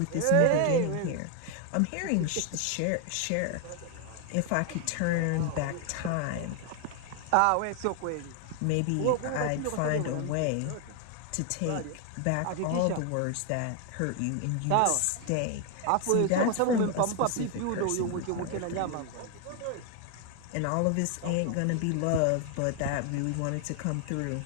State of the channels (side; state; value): both; different; correlation 0.00